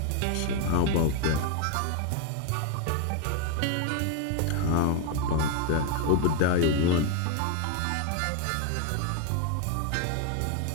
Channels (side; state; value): both; different; correlation 0.01